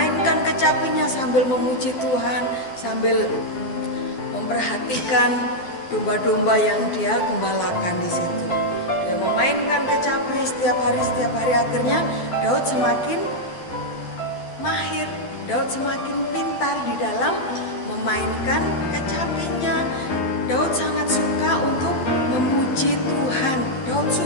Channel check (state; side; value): late; right; 12 ms